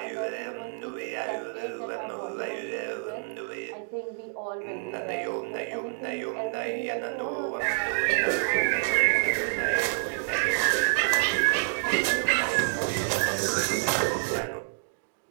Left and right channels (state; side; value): silent; left; digital silence